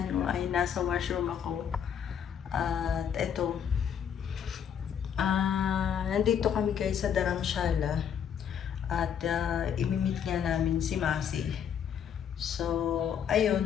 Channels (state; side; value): quieter; right; 8.2 dB